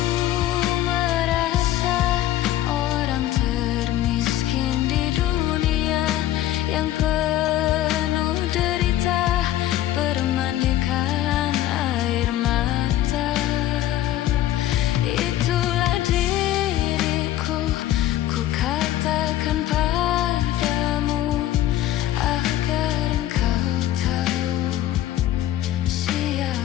merasa orang termiskin di dunia, yang penuh derita bermandikan air mata. Itulah diriku, ku katakan padamu agar engkau tahu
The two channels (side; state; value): right; quieter; 13.3 dB